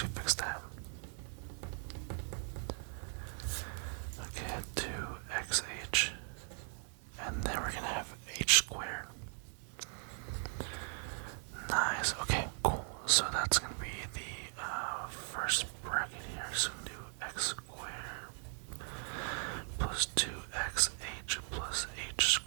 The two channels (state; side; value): silent; left; 52 dB below the other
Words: fix that. Okay, 2xh. And then we're gonna have h squared. Nice. Okay, cool. So that's gonna be the first bracket here. So we do x squared plus 2xh plus h